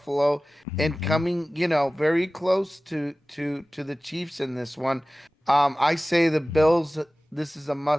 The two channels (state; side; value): normal; both; correlation 0.97